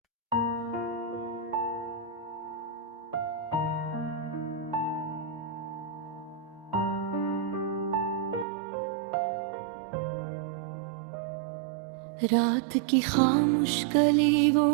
रात की खामोश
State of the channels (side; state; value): left; drops out; at 8.5 s